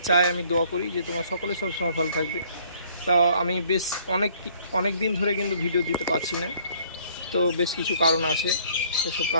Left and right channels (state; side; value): inverted; both; correlation -0.59